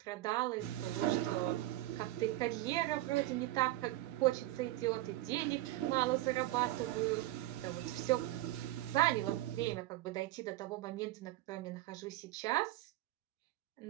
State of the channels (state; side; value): quieter; left; 16.8 dB